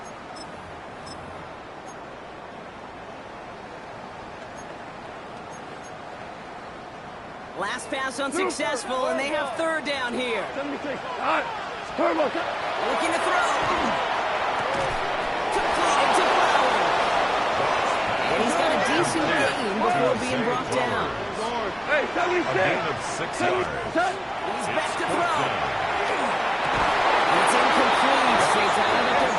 Last pass unsuccessful, and they have third down here. 76. All right. Turbo. Looking to throw. Completed to Fowler. And he's got a decent gain before being brought down. Hey, 76. He's back to throw. It's incomplete. They found their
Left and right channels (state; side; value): identical; both; correlation 1.00